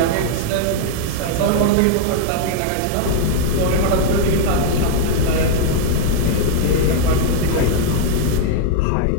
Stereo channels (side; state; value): both; different; correlation 0.00